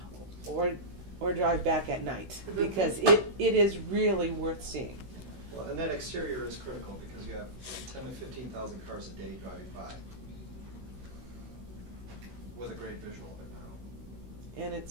or drive back at night, because it is really worth seeing. Well, and that exterior is critical because you have 10 to 15,000 cars a day driving by with a great visual of it now. And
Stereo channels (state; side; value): late; left; 16 ms